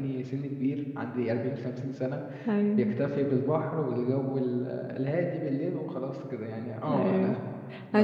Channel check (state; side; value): identical; both; correlation 1.00